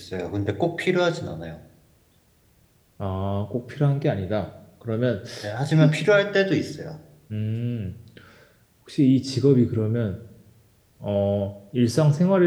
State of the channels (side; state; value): both; identical; correlation 1.00